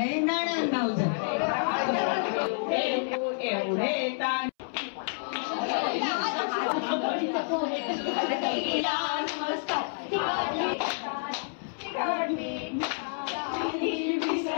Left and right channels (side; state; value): right; silent; 59 dB below the other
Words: नणन भाऊजाई एवढे ताण